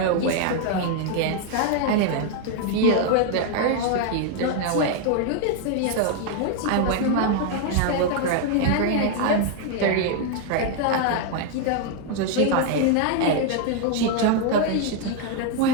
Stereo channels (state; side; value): different; both; correlation 0.00